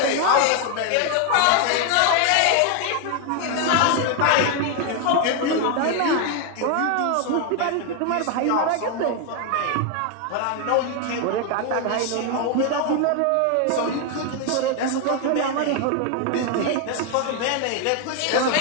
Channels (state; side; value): different; both; correlation 0.01